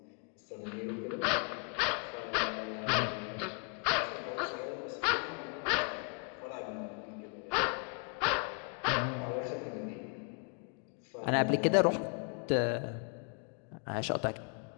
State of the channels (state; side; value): quieter; right; 37.9 dB